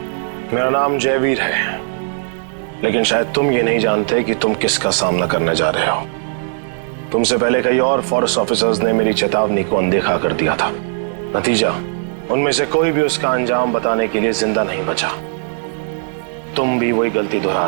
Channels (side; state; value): left; silent; digital silence